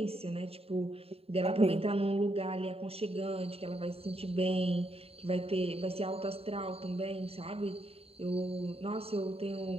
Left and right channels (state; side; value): late; left; 0.29 ms